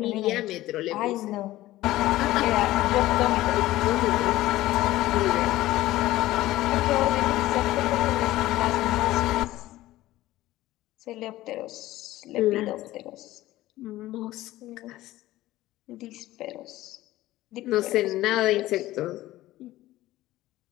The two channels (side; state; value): right; quieter; 16.1 dB